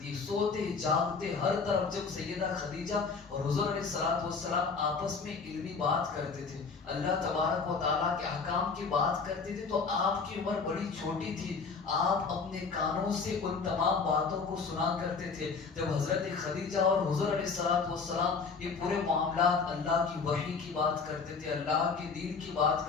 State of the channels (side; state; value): right; quieter; 5.0 dB